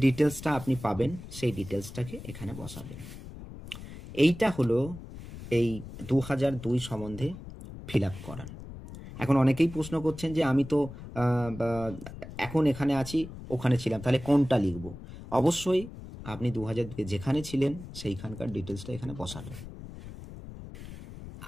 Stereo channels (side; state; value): left; noise; rumble, 13 dB below the sound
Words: ডিটেলসটা আপনি পাবেন সেই ডিটেলসটাকে এখানে বসাবেন। এইটা হলো এই 2002 সম্বন্ধে ফিল আপ করার। এখন অনেকেই প্রশ্ন করছেন যে আমি তো এখন এখানে আছি, ওখানে ছিলাম, তাহলে কোনটা লিখব? অবশ্যই আপনি 2002-এ যেখানে ছিলেন সেইখানকার ডিটেলসটা এখানে বসাবেন।